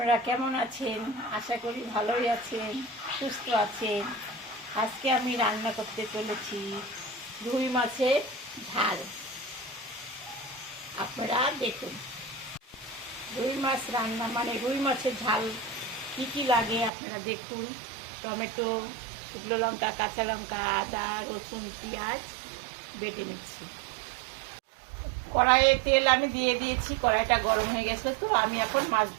কেমন আছেন? আশা করি ভালোই আছেন, সুস্থ আছেন। আজকে আমি রান্না করতে চলেছি রুই মাছের ঝাল। আপনারা দেখুন, রুই মাছ রান্না মানে রুই মাছের ঝাল কী কী লাগে আপনারা দেখুন। টমেটো, শুকনো লঙ্কা, কাঁচা লঙ্কা, আদা, রসুন, পেঁয়াজ বেটে নিচ্ছি। কড়াইয়ে তেল আমি দিয়ে দিয়েছি, কড়াইটা গরম হয়ে গেছে, তো আমি এখন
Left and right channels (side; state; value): left; drops out; at 16.9 s